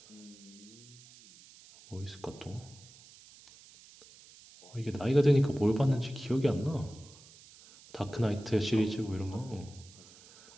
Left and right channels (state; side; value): noise; right; hiss, 22 dB below the sound